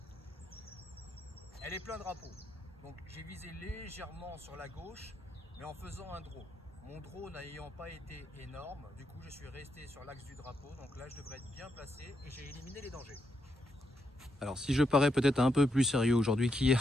elle est plein drapeau. Donc j'ai visé légèrement sur la gauche, mais en faisant un draw. Mon draw n'ayant pas été énorme, du coup je suis resté sur l'axe du drapeau. Donc là je devrais être bien placé et j'ai éliminé les dangers. Alors si je parais peut-être un peu plus sérieux aujourd'hui qu'hier,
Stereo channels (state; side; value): normal; both; correlation 0.80